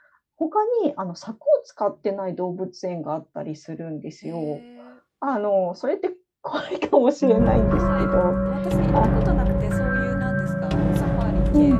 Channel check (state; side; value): identical; both; correlation 1.00